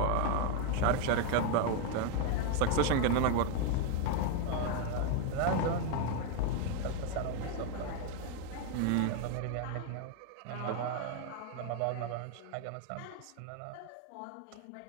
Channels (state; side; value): different; both; correlation 0.01